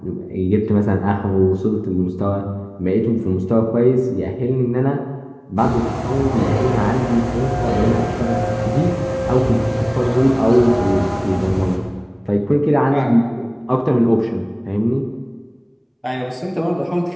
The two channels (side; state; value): both; identical; correlation 1.00